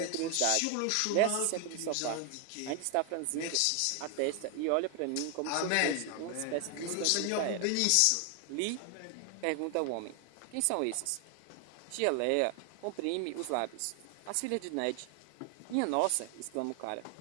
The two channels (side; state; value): both; different; correlation 0.00